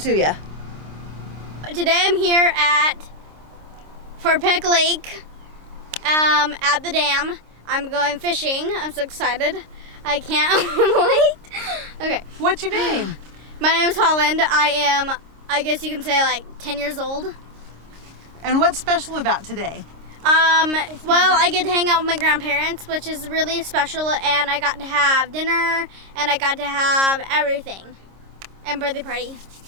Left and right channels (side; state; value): left; late; 26 ms